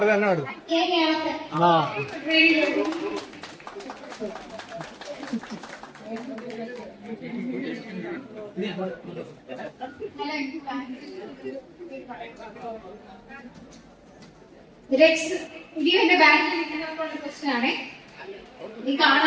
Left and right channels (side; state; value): both; identical; correlation 1.00